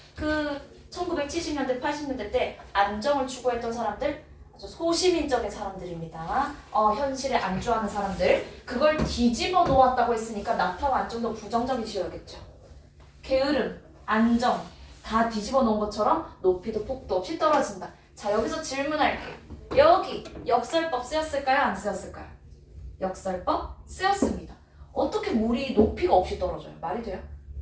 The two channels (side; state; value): both; identical; correlation 1.00